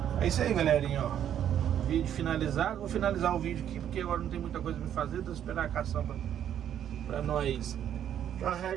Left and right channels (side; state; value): left; quieter; 10.0 dB